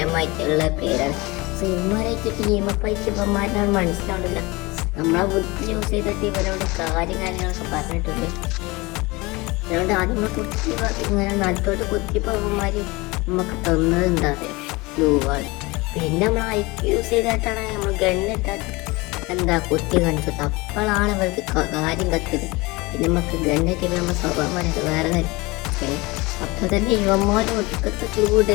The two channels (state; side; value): quieter; right; 23.6 dB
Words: പേരാണ്. സോ ഇവന്മാരായിട്ട് ടീമപ്പ് ആയിട്ട് ഇവന്മാരാണ് മനസ്സിലാവുന്നില്ല. നമ്മളെ ബുദ്ധി യൂസ് ചെയ്തിട്ട് ഇവരോട് കാര്യങ്ങളൊക്കെ പറഞ്ഞിട്ടുണ്ട്. അതുകൊണ്ട് ആദ്യം നമ്മൾ കുത്തി ഇങ്ങനെ നടുത്തോട്ട് കുത്തിയപ്പോൾ അവന്മാർ നമുക്ക് തന്നത് എന്താ പറയുക, ബ്ലൂവാണ്. പിന്നെ നമ്മൾ ഐക്ക് യൂസ് ചെയ്തിട്ടാണ് നമ്മൾ ഗണ്ണിട്ടാട്ട് എന്താ കുത്തി കാണിച്ചത്. അപ്പോഴാണ് അവർക്ക് കാര്യം കത്തിയത്. പിന്നെ നമുക്ക് ഗണ്ണിട്ട് നമ്മൾ സ്വഭാവമായിട്ട് വേറെ കാര്യം. അപ്പോൾ തന്നെ ഇവന്മാർ ഒടുക്കത്തെ